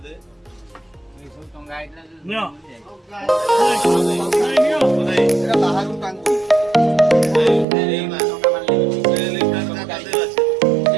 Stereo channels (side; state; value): left; drops out; at 7.7 s